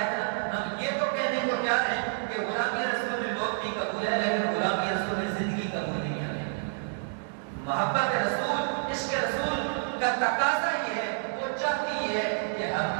ہے ہم یہ تو کہنے کو تیار ہیں کہ غلامی رسول میں موت بھی قبول ہے، لیکن غلامی رسول میں زندگی قبول نہیں ہے۔ محبت رسول، عشق رسول کا تقاضا یہ ہے، وہ چاہتی یہ ہے کہ ہم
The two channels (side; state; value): left; silent; digital silence